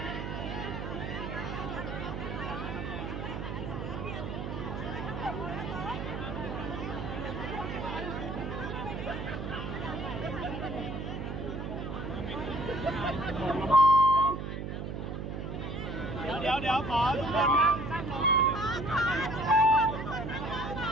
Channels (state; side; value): noise; right; hum, 5 dB below the sound